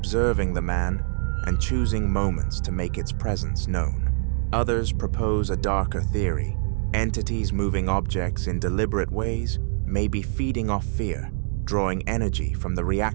the man and choosing moments to make its presence known. Others propose a darker theory. Entities moving objects in deliberate ways may be feeding off fear, drawing energy from the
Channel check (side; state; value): left; silent; digital silence